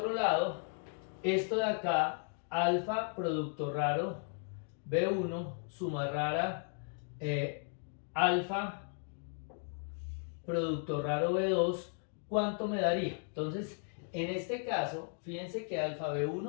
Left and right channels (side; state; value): right; silent; 54 dB below the other